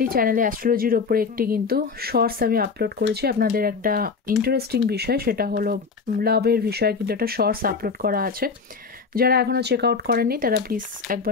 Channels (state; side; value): quieter; right; 5.0 dB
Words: চ্যানেলে অ্যাস্ট্রোলজির ওপরে একটি কিন্তু শর্টস আমি আপলোড করেছি। আপনাদের একটা ইন্টারেস্টিং বিষয়, সেটা হলো লাভের বিষয়ে কিন্তু একটা শর্টস আপলোড করা আছে। যারা এখনও চেক আউট করেননি তারা প্লিজ